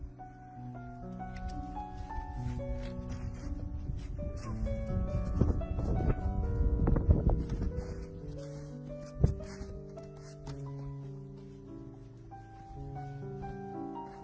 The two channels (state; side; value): identical; both; correlation 1.00